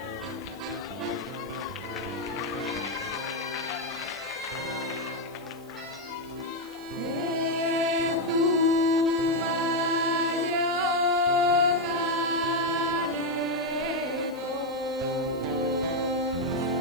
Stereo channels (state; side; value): noise; right; hiss, 24 dB below the sound